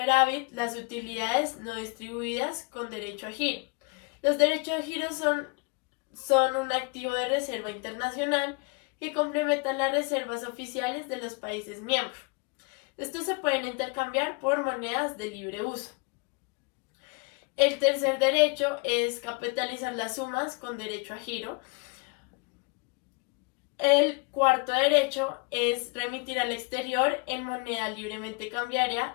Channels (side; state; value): right; quieter; 31.7 dB